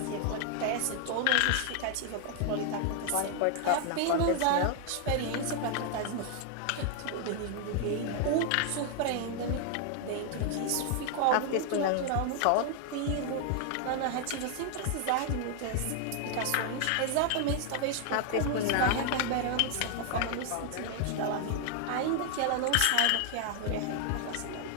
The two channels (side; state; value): both; different; correlation 0.00